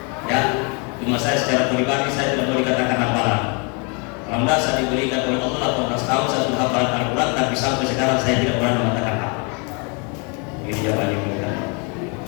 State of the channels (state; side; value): quieter; right; 34.0 dB